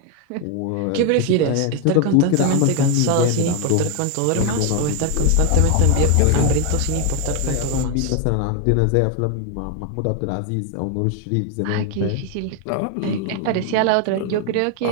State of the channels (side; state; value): both; different; correlation 0.01